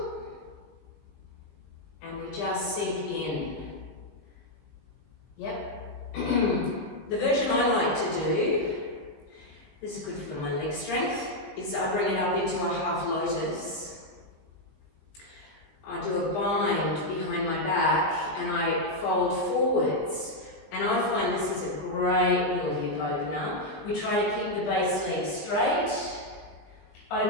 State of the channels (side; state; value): right; late; 20 ms